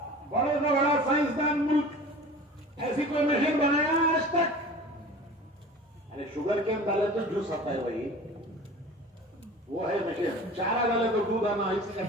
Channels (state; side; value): normal; both; correlation 0.40